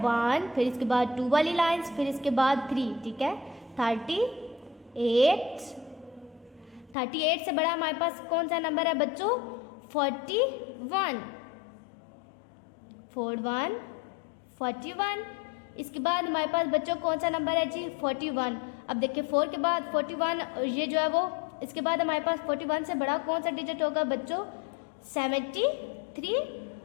1, फिर इसके बाद 2 वाली लाइंस, फिर इसके बाद 3, ठीक है। 38 से बड़ा हमारे पास कौन सा नंबर है बच्चों? 41। 41। इसके बाद हमारे पास बच्चों कौन सा नंबर है जी? 41। अब देखिए 4 के बाद 41, ये जो है वो, इसके बाद हमारे पास 41 से बड़ा कौन सा डिजिट होगा बच्चों? 73।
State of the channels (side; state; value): right; drops out; at 7.0 s